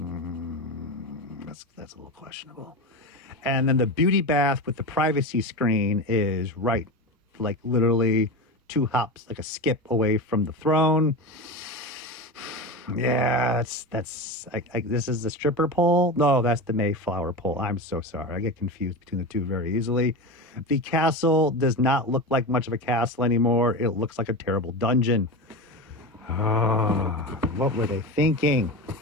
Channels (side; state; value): both; normal; correlation 0.23